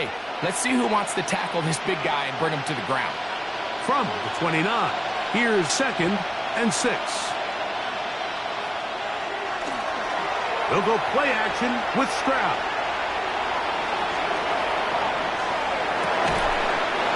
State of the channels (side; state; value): both; identical; correlation 1.00